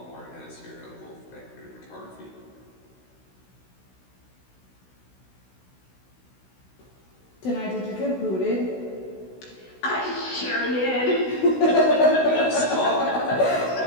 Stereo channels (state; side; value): late; right; 16 ms